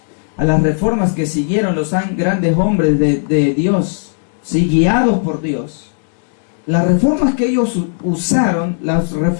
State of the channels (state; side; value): silent; right; digital silence